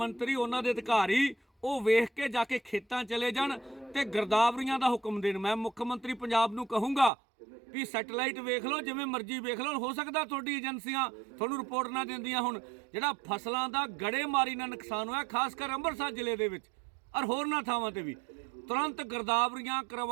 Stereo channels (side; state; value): left; drops out; at 7.1 s